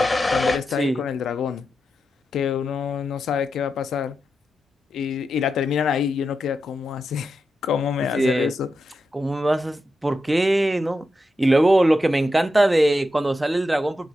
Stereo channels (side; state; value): both; normal; correlation 0.88